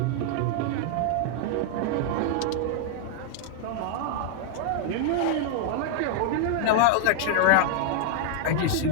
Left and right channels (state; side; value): different; both; correlation -0.01